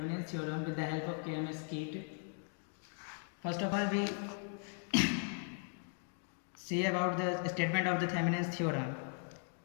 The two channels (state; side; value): silent; right; 52 dB below the other